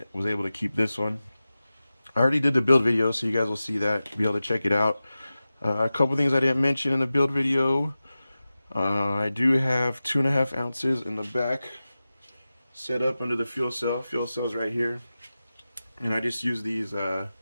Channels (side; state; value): both; inverted; correlation -0.95